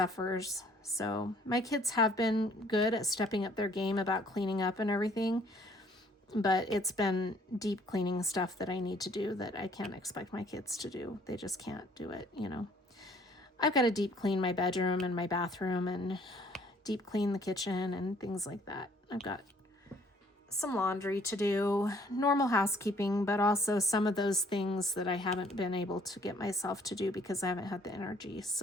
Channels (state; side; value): normal; both; correlation 0.60